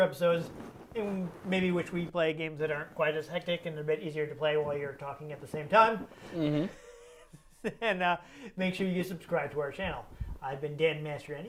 episodes, and maybe which we play games that aren't quite as hectic and a bit easier to play while you're talking at the same time, and make sure you subscribe to our channel. I've been Dan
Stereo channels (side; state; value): both; identical; correlation 1.00